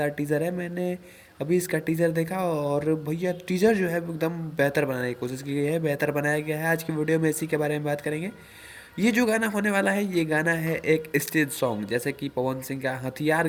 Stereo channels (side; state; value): both; identical; correlation 1.00